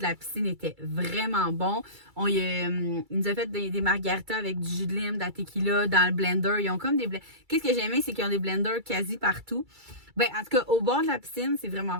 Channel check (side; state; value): left; late; 2.3 ms